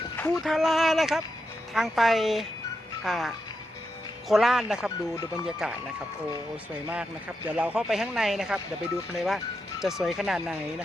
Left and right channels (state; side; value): normal; both; correlation 0.86